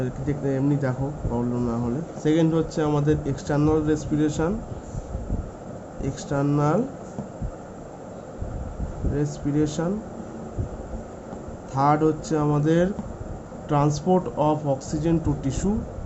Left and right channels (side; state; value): both; identical; correlation 1.00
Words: দেখতে এমনি দেখো প্রবলেম না হলে। সেকেন্ড হচ্ছে আমাদের external respiration, external respiration. Third হচ্ছে আমাদের transport of oxygen to tissue,